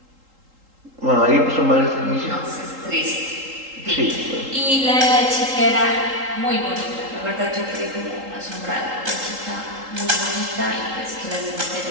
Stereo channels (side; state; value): left; late; 3.8 ms